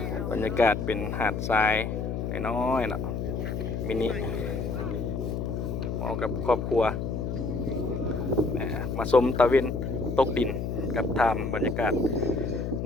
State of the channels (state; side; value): noise; left; hum, 3 dB below the sound